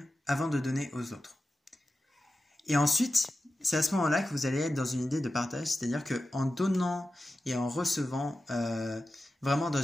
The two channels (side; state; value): both; normal; correlation 0.93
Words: avant de donner aux autres. Et ensuite, c'est à ce moment-là que vous allez être dans une idée de partage, c'est-à-dire qu'en donnant et en recevant, vraiment dans